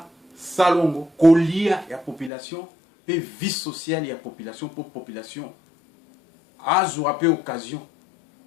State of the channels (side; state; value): right; drops out; at 2.3 s